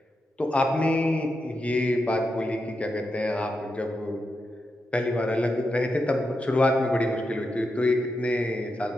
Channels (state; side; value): normal; both; correlation 0.86